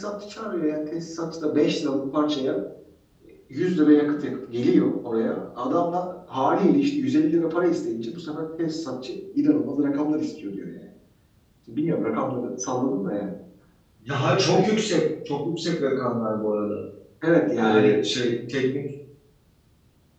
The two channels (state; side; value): identical; both; correlation 1.00